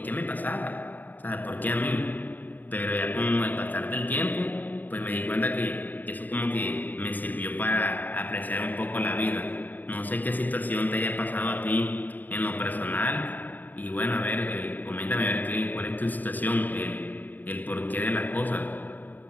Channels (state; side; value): late; right; 0.085 ms